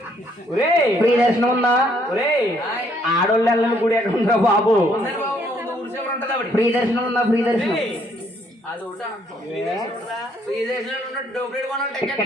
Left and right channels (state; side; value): normal; both; correlation 0.67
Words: ఒరే ఫ్రీ దర్శనం ఉందా? ఒరే ఆడోళ్ళు వెళ్ళని గుడి ఎక్కడ ఉందా బాబు? ఉందండి బాబు, ఊరి చివర ఉంటుంది ఆవిడ. ఫ్రీ దర్శనం ఉందా? ఫ్రీ దర్శనం అది ఒకటా? ఫ్రీ దర్శనం ఉన్నట్టు డబ్బులు కొనాలి టికెట్.